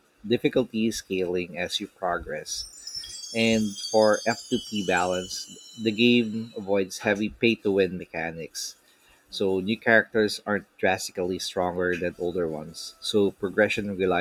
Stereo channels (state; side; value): identical; both; correlation 1.00